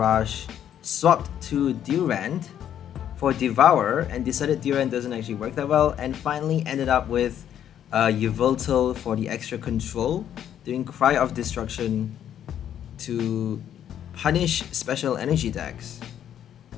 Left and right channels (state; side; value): quieter; right; 10.1 dB